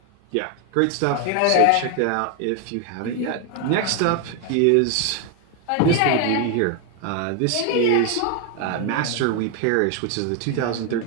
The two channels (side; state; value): both; different; correlation 0.01